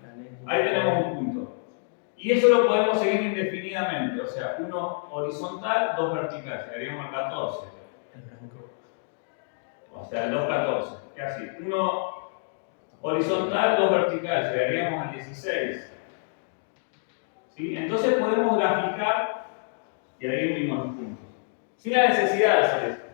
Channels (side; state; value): right; silent; digital silence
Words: Ahí tenemos un punto. Y eso lo podemos seguir indefinidamente. O sea, uno horizontal, 2 vertical. Llegaríamos al 14. O sea, el 2, 14. ¿Qué así? Uno horizontal, 2 vertical. Llegaríamos al 16. ¿Sí? Entonces podemos graficar y ahí unimos los puntos. Sin la necesidad de hacer esto.